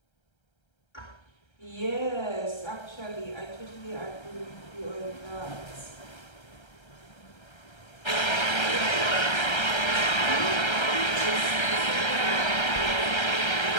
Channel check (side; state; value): right; late; 1.3 ms